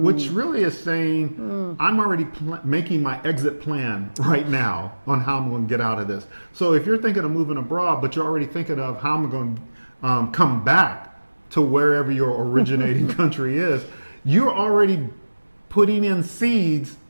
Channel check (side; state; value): both; inverted; correlation -1.00